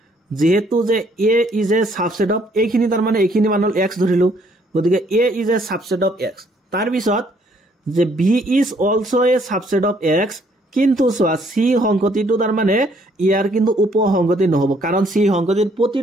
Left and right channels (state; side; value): normal; both; correlation 0.65